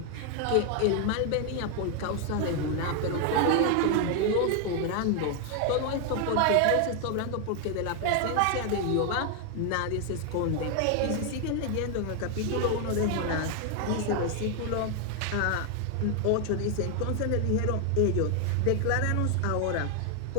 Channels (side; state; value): both; different; correlation 0.01